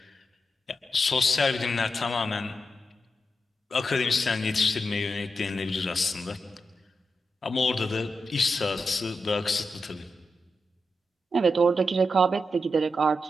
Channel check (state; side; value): normal; both; correlation 0.87